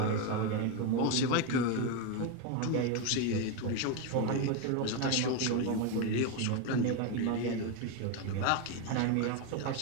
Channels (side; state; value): both; different; correlation 0.03